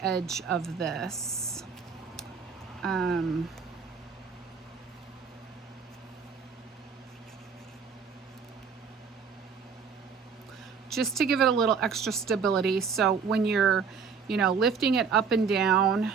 edge of this. Just to give it a little extra stability. So when you're, lifting it up and down,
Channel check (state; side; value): quieter; left; 5.9 dB